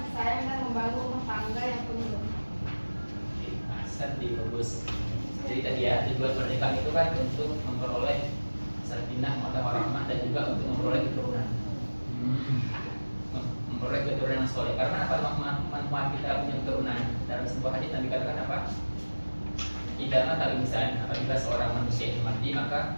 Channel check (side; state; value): both; inverted; correlation -1.00